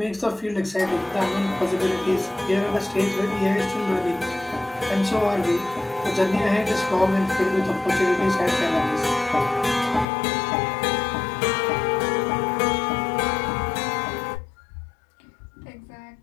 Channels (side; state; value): right; drops out; at 10.1 s